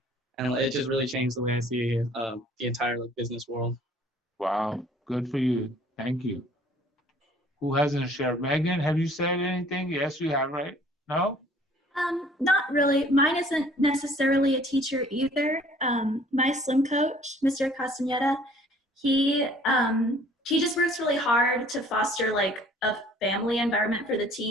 and it just really changed the way I see the entire like business world. Wow, good for you. Thank you. Who hasn't shared? Megan, have you said anything? Yes, you have, right? No? Not really. Mine isn't necessarily a teacher either. My swim coach, Mr. Castaneda, he just works really hard to foster like a family environment for the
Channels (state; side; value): normal; both; correlation 0.55